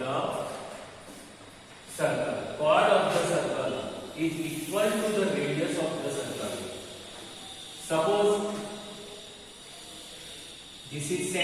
circle. Chord of the circle is equal to the radius of the circle. Suppose this is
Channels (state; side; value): identical; both; correlation 1.00